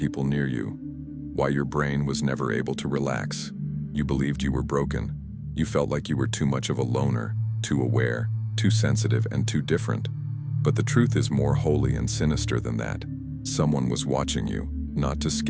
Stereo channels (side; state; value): both; identical; correlation 1.00